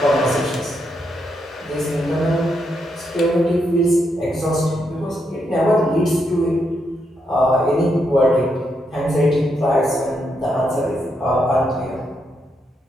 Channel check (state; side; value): normal; both; correlation 0.80